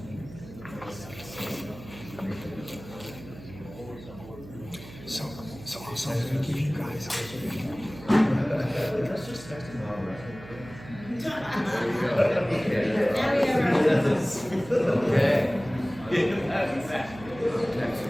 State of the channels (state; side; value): noise; right; hum, 16 dB below the sound